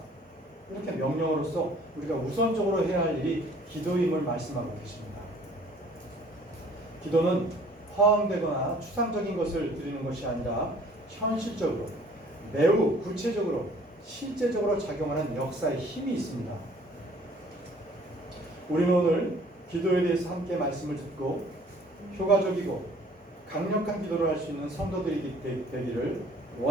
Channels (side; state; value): both; normal; correlation 0.55